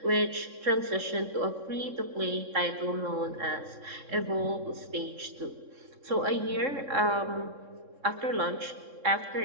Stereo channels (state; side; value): late; left; 3.6 ms